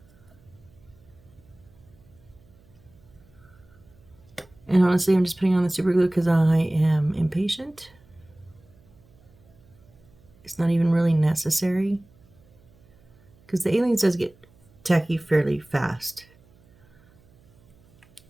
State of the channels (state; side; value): noise; right; hum, 29 dB below the sound